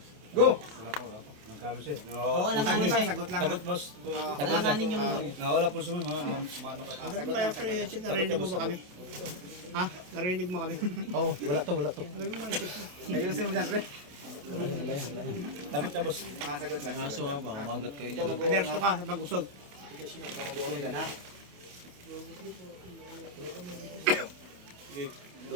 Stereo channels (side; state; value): left; late; 28 ms